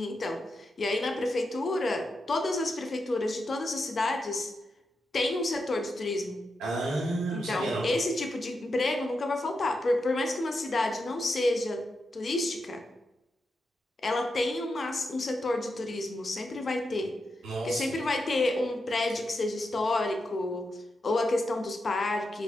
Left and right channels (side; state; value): both; normal; correlation 0.87